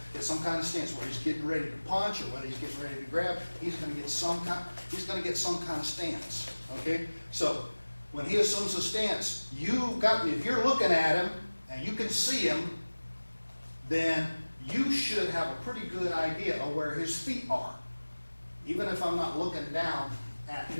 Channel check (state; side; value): inverted; both; correlation -1.00